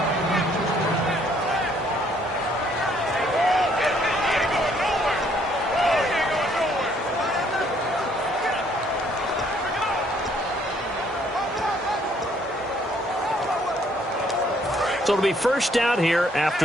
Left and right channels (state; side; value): normal; both; correlation 0.65